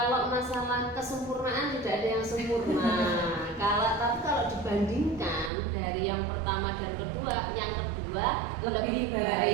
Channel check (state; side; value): drops out; left; at 5.5 s